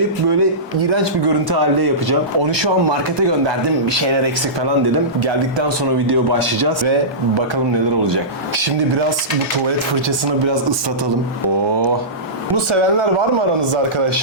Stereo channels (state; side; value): normal; both; correlation -0.19